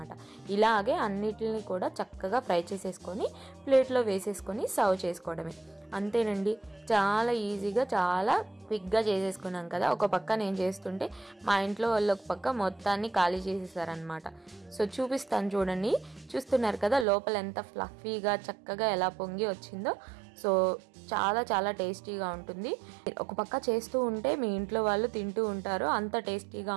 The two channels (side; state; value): left; drops out; at 17.1 s